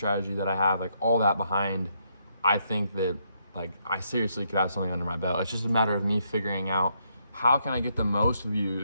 that I have, like all that behind. I think that like I seriously could have something under my belt. It's just a matter of me figuring out how can I get the most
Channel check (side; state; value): both; inverted; correlation -0.76